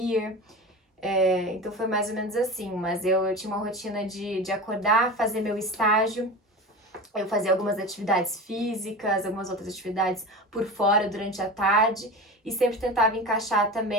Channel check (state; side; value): normal; both; correlation 0.29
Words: Então foi mais ou menos assim, mas eu tinha uma rotina de acordar, fazer meu estágio, eu fazia algumas atividades físicas, algumas outras atividades por fora durante a tarde e sempre tentava encaixar